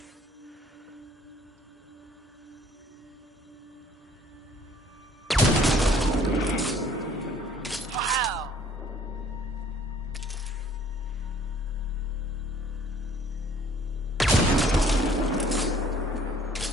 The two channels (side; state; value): both; normal; correlation 0.57